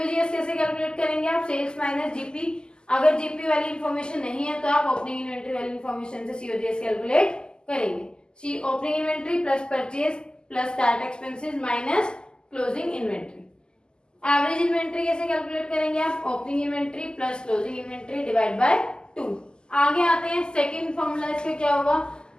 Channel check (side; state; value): right; late; 0.046 ms